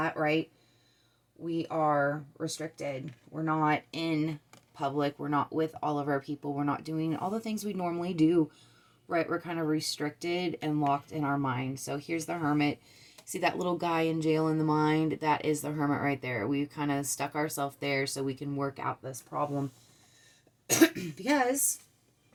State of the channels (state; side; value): identical; both; correlation 1.00